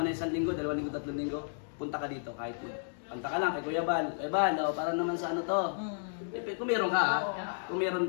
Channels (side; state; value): right; silent; digital silence